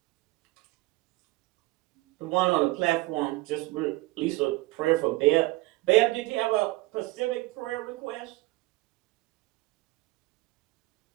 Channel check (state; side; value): quieter; left; 20.8 dB